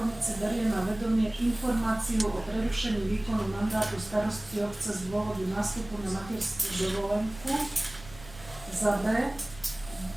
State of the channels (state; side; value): noise; right; rumble, 18 dB below the sound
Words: berie na vedomie informáciu o prerušení výkonu mandátu starostky obce z dôvodu nástupu na materskú dovolenku. Za B.